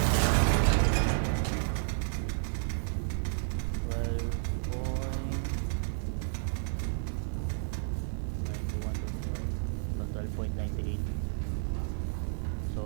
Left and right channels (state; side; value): silent; left; digital silence